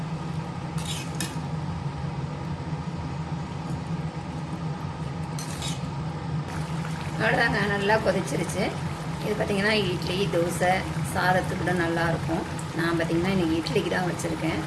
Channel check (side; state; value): both; identical; correlation 1.00